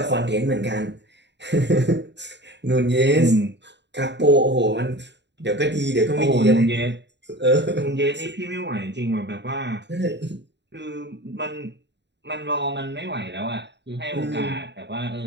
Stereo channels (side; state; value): left; late; 0.51 ms